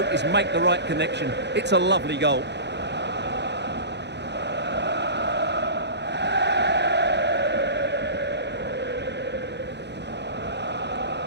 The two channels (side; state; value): left; late; 0.50 ms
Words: is make the right connection. It's a lovely goal.